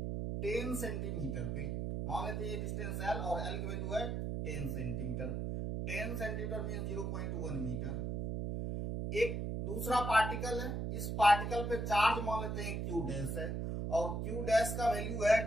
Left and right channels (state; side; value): noise; right; hum, 2 dB below the sound